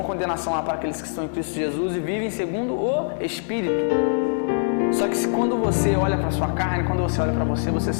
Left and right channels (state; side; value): silent; right; digital silence